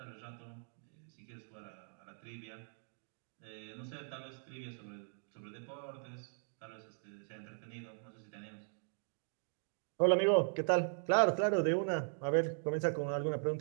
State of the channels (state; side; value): silent; left; digital silence